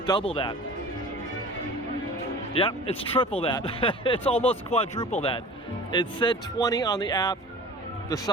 double that. Yep, it's triple that. It's almost quadruple that. It said 20 on the app. The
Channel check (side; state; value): both; normal; correlation 0.41